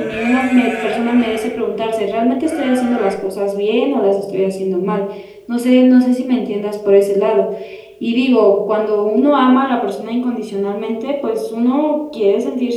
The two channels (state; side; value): identical; both; correlation 1.00